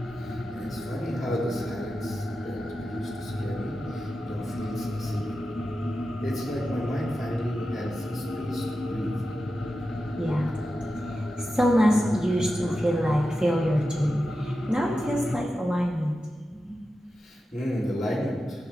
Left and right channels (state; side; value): normal; both; correlation 0.91